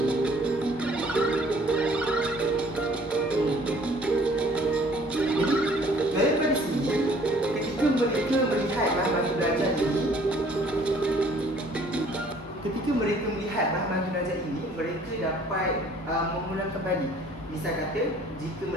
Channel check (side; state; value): both; normal; correlation 0.56